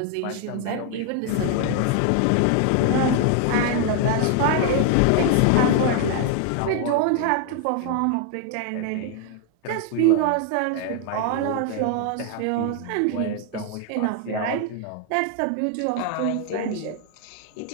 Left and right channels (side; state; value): both; different; correlation 0.00